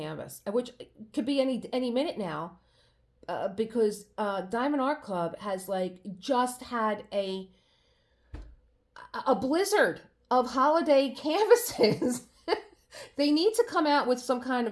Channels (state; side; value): identical; both; correlation 1.00